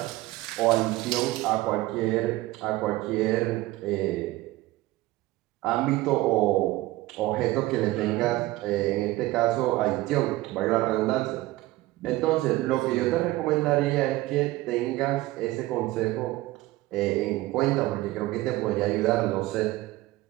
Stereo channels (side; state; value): left; quieter; 18.1 dB